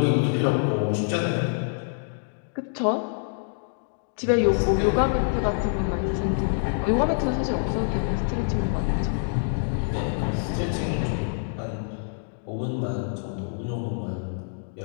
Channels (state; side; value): silent; right; digital silence